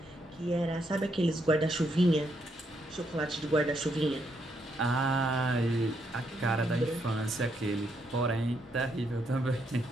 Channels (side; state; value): both; normal; correlation 0.76